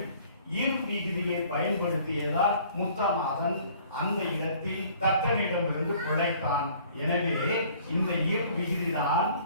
இன் விகுதியை பயன்படுத்தியதால் முத்தநாதன் அந்த இடத்தில் தக்கனிடமிருந்து பிழைத்தான். எனவே இந்த இர் விகுதிதான்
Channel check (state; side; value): inverted; both; correlation -0.55